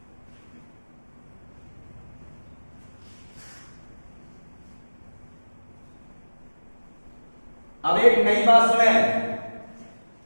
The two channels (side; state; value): both; inverted; correlation -1.00